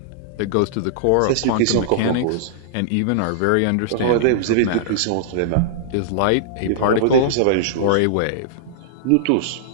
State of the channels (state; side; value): different; both; correlation -0.02